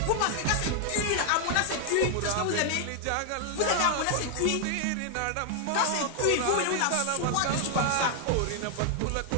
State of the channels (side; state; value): both; different; correlation 0.00